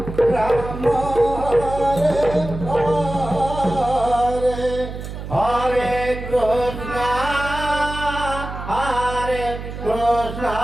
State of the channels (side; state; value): right; noise; hum, 9 dB below the sound